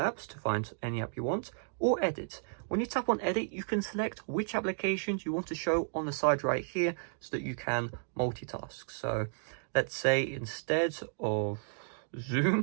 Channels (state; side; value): silent; left; digital silence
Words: to find any app you want, or edit. When you tap on edit, you can select which applications you want to show on the side right here so that you can multitask. So let's say instead of